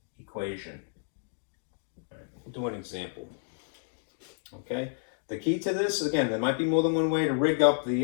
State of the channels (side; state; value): right; silent; digital silence